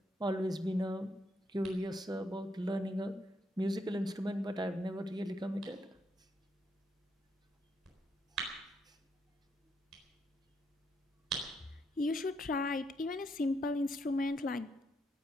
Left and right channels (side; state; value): both; normal; correlation 0.77